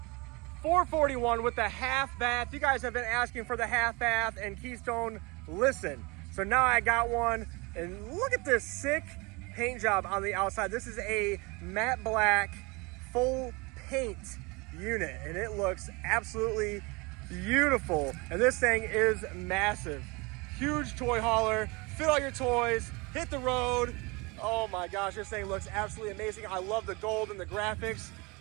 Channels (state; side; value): quieter; left; 26.6 dB